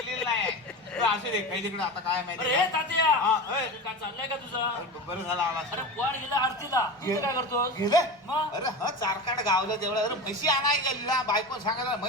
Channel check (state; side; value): normal; both; correlation 0.27